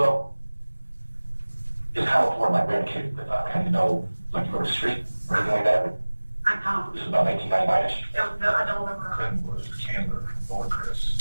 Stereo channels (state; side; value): inverted; both; correlation -1.00